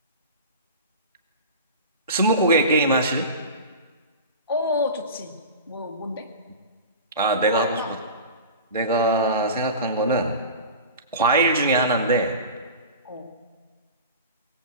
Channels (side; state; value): both; inverted; correlation -0.33